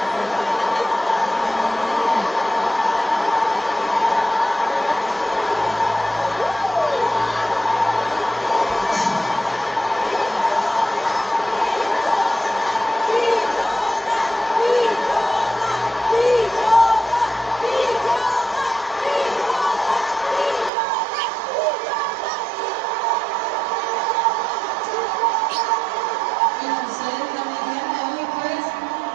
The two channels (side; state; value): left; drops out; at 20.7 s